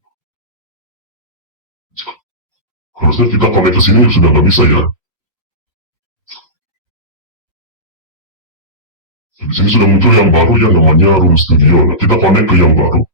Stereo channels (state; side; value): normal; both; correlation -0.19